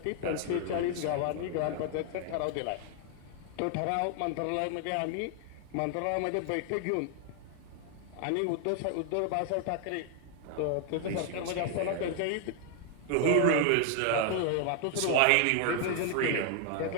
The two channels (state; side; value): different; both; correlation 0.00